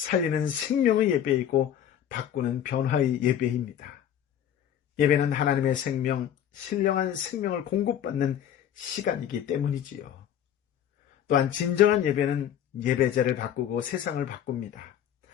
생명의 예배이고 바꾸는 변화의 예배입니다. 예배는 하나님의 생명, 신령한 생명을 공급받는 시간이기 때문이지요. 또한 진정한 예배는 예배자를 바꾸고 세상을 바꿉니다.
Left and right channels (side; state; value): right; quieter; 10.0 dB